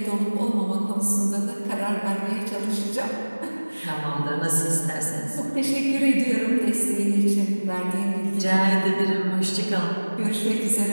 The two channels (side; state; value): both; inverted; correlation -1.00